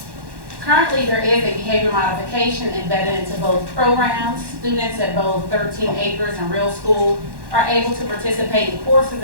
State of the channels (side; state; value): left; late; 1.1 ms